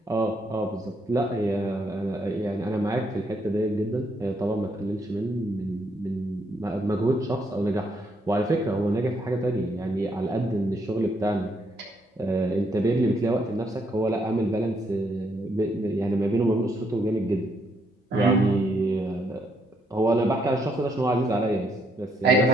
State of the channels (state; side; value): normal; both; correlation 0.74